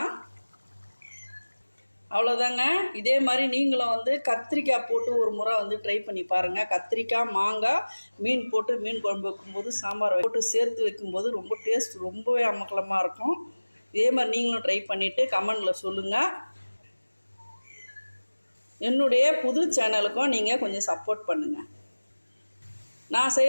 அவ்வளோதாங்க. இதே மாதிரி நீங்களும் வந்து கத்திரிக்காய் போட்டு ஒரு முறை வந்து ட்ரை பண்ணி பாருங்கள். கத்திரிக்காய், மாங்காய், மீன் போட்டு மீன் குழம்பு வைக்கும்போது, சாம்பார் போட்டு சேர்த்து வைக்கும்போது ரொம்ப டேஸ்ட் ரொம்பவே அமக்கலமாக இருக்கும். இதே மாதிரி நீங்களும் ட்ரை பண்ணிவிட்டு கமெண்டில் சொல்லுங்கள். என்னுடைய புது சேனலுக்கும் நீங்கள் கொஞ்சம் சப்போர்ட் பண்ணுங்கள். நான்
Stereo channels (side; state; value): both; inverted; correlation -1.00